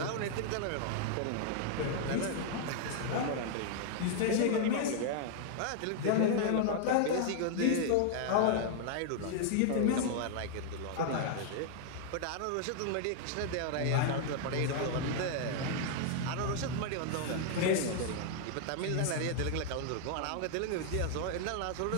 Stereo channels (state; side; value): different; both; correlation 0.00